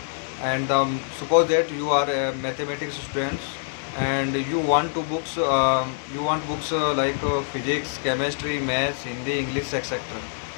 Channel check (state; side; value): silent; right; digital silence